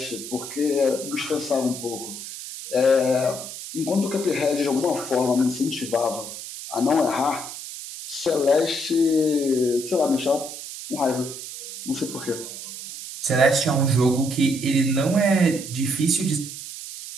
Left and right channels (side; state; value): right; noise; hiss, 10 dB below the sound